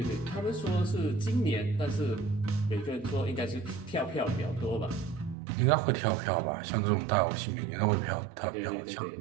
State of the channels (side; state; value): left; drops out; at 5.4 s